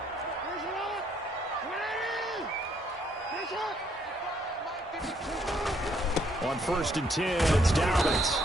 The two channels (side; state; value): both; normal; correlation 0.69